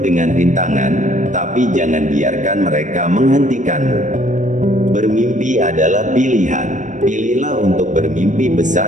rintangan, tapi jangan biarkan mereka menghentikanmu. Bermimpi adalah pilihan. Pilihlah untuk bermimpi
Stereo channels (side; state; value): left; late; 0.36 ms